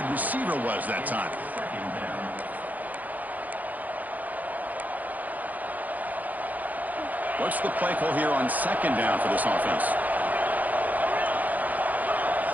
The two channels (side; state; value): left; late; 0.080 ms